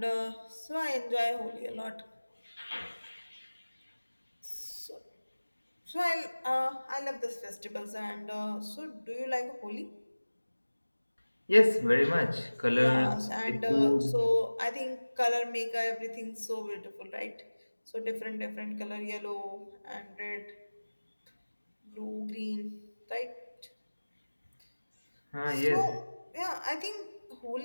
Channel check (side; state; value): both; inverted; correlation -1.00